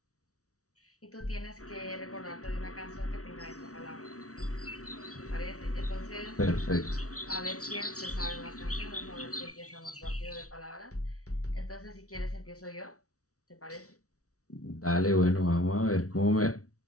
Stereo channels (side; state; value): right; late; 0.66 ms